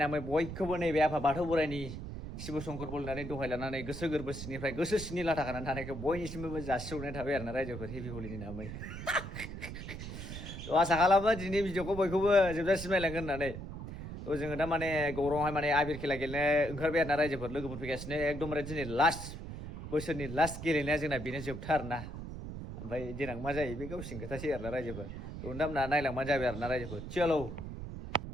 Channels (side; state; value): right; noise; rumble, 8 dB below the sound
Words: बयखौबो नैबे आफा बाथौ बोराइनि शिब शंकर बोलनानै दहाय लानानै गोसो गोरबो सिंनिफ्राय गोसो सिंनि लाथा खानानै थानायखौ बयनिसिमबो जासिहरनाय थाबाय आरोना रायजोफोर हेपि हलिनि नामै थ' आसा खालामो दिनै भिडिअखौ बयखौबो जोबजासिम नायलांगोन होननानै थ' जोङो दा माने गौराङावहाय माने आबिर खेला गेलेनो ओंखारबाय आरोना रायजोफोर लोगोफोर फैगासिनो एकदमबारे दिनै लास्ट बोसोरनि लास्ट गेलेनाया जोंना बेनो जोबथा आरोना ओमफ्राय देनां मा जायो बे गावसिनि खोथासै आरोना रायजोफोर थ' नोंथांमोना नायलांबानो जाबाय आरोना रायजोफोर चलो